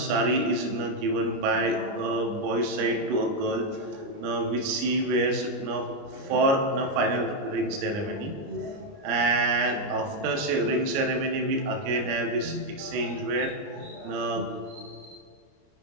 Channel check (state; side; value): late; left; 29 ms